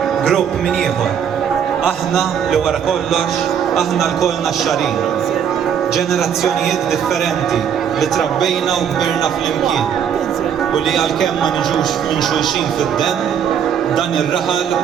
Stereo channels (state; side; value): quieter; left; 8.2 dB